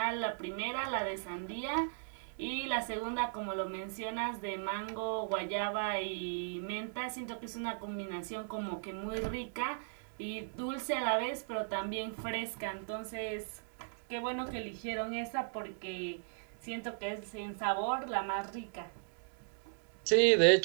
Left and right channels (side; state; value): left; silent; digital silence